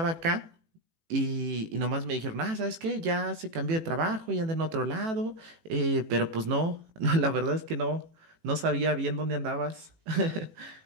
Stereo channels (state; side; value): late; left; 18 ms